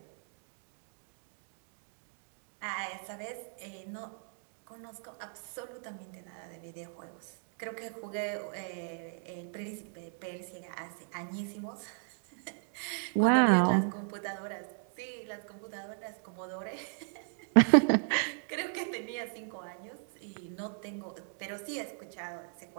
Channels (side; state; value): left; silent; 54 dB below the other